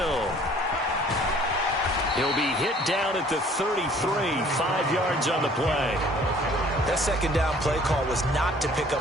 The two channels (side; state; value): both; normal; correlation 0.55